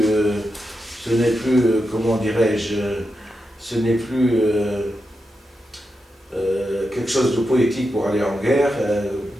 comment dirais-je, ce n'est plus quelque chose de poétique pour aller en guerre,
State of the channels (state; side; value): normal; both; correlation 0.87